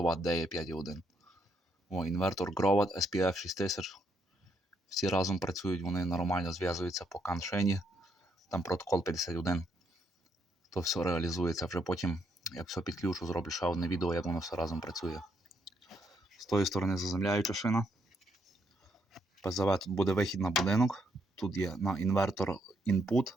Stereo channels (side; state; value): both; normal; correlation 0.75